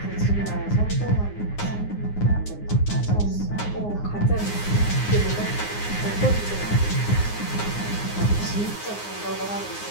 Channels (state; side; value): late; right; 9.6 ms